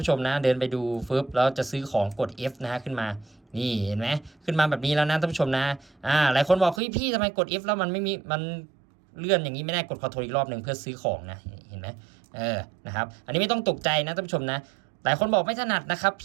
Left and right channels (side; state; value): left; drops out; at 6.8 s